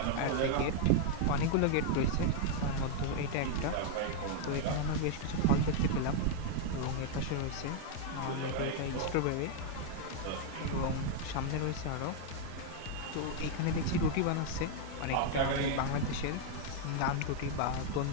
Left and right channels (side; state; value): both; different; correlation 0.00